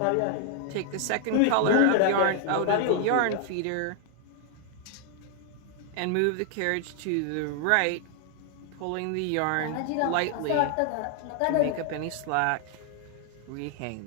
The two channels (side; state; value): both; different; correlation 0.00